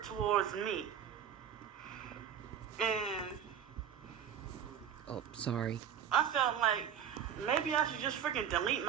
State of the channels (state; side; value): quieter; left; 8.9 dB